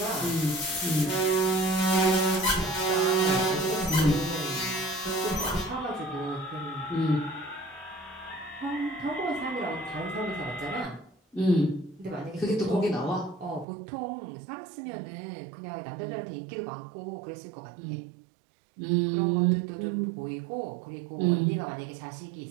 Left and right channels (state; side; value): drops out; left; at 13.7 s